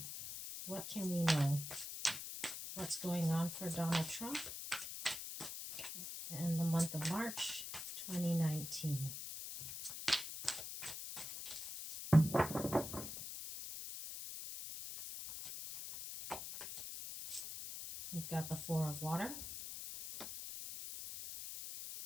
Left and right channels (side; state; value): left; noise; hiss, 7 dB below the sound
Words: What can we know? What's going on for Donald Trump in the month of March 2019? You've got the Four of Water,